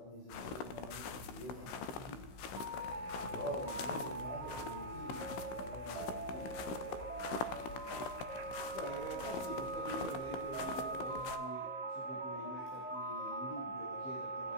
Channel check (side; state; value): right; late; 15 ms